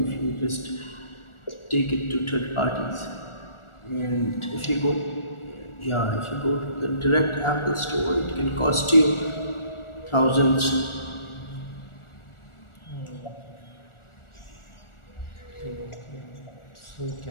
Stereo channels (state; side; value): late; right; 1.4 ms